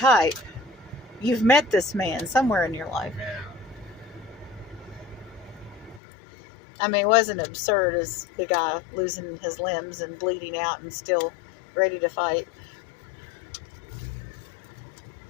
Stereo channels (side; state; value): right; drops out; at 6.0 s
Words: You've met this man somewhere in your life. Yeah. I mean, it wasn't absurd as the guy losing his limbs and bleeding out and still ready to fight.